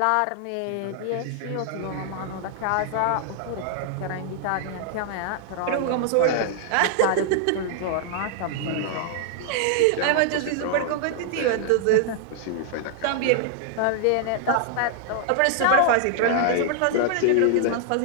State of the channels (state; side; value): different; both; correlation -0.01